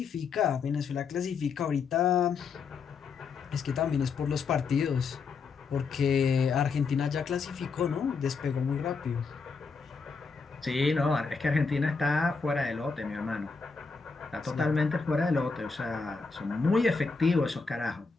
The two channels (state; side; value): quieter; right; 4.9 dB